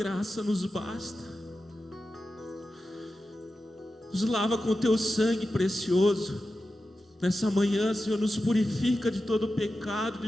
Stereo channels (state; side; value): normal; both; correlation 0.92